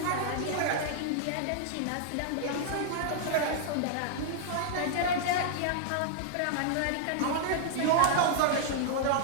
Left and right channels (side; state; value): both; different; correlation -0.01